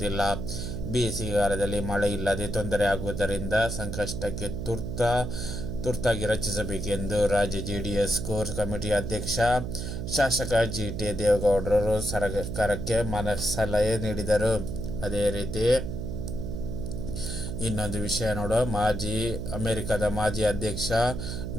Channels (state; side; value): noise; right; hum, 5 dB below the sound